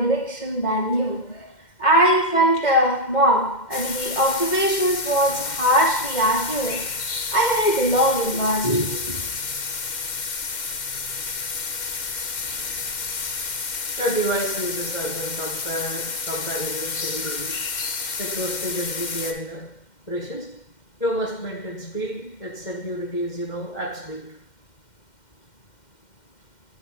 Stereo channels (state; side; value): late; right; 2.1 ms